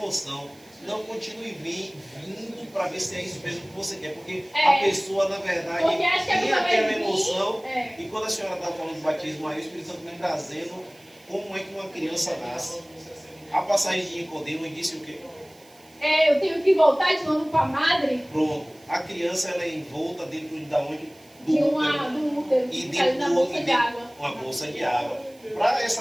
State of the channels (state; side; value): noise; right; hiss, 27 dB below the sound